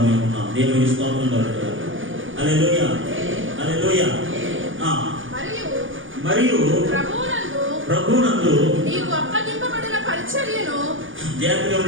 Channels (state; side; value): late; left; 0.57 ms